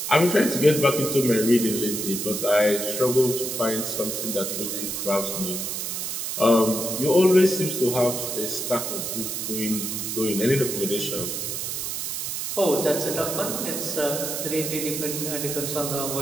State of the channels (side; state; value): right; noise; hiss, 3 dB below the sound